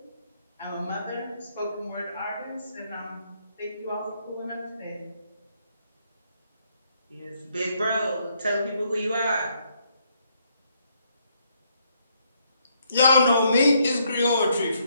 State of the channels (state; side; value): inverted; both; correlation -0.73